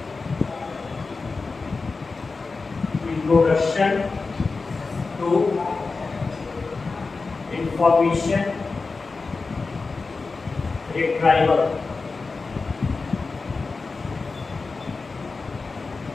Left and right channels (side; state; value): right; quieter; 4.1 dB